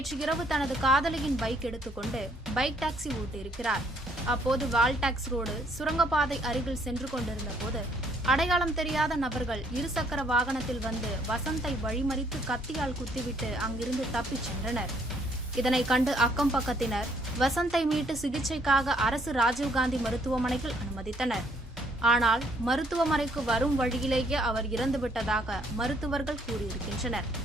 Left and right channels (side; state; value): both; normal; correlation 0.66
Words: இரவு தனது காதலியின் பைக் எடுத்துக்கொண்டு பைக் டாக்ஸி ஓட்டியிருக்கிறார். அப்போது வால்டாக்ஸ் ரோடு சுரங்கப்பாதை அருகில் சென்று கொண்டிருந்த போது அடையாளம் தெரியாத நபர்கள் இருசக்கர வாகனத்தில் வந்து வசந்தை வழிமறித்து கத்தியால் குத்திவிட்டு அங்கிருந்து தப்பிச் சென்றனர். இதனை கண்டு அக்கம் பக்கத்தினர் வசந்தை மீட்டு சிகிச்சைக்காக அரசு ராஜீவ்காந்தி மருத்துவமனையில் அனுமதித்தனர். ஆனால் மருத்துவமனைக்கு வரும் வழியிலேயே அவர் இறந்துவிட்டதாக மருத்துவர்கள் கூறியிருக்கின்றனர்.